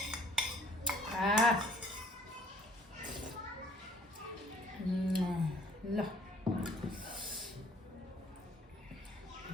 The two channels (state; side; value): normal; both; correlation 0.58